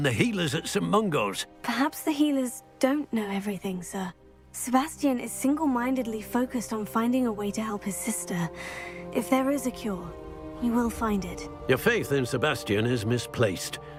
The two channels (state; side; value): identical; both; correlation 1.00